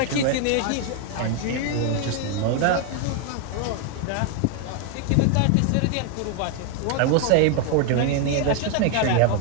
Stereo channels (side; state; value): both; different; correlation 0.00